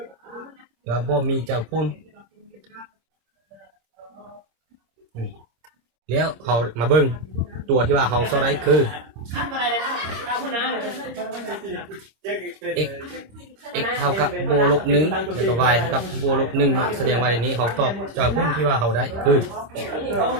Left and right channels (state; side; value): late; left; 26 ms